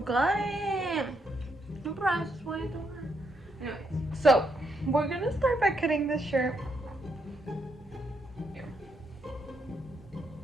cut it. The price is way too high. Anyways, so we're gonna start by cutting this shirt. Here.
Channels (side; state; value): both; normal; correlation 0.78